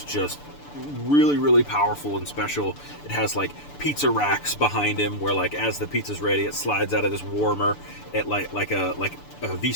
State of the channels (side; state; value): right; late; 6.9 ms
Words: just really, really powerful and special. It has like pizza racks behind him where like as the pizza's ready, it slides out of this warmer at like a